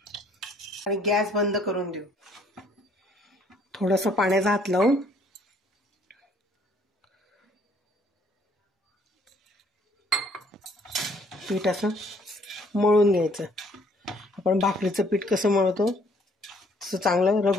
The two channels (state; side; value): normal; both; correlation 0.62